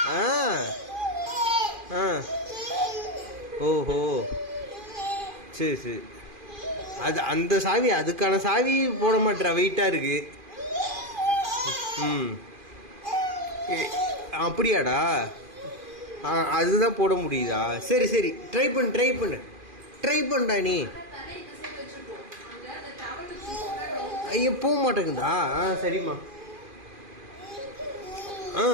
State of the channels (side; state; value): left; late; 2.4 ms